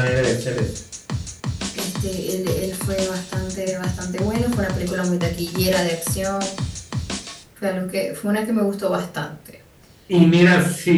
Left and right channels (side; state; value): both; identical; correlation 1.00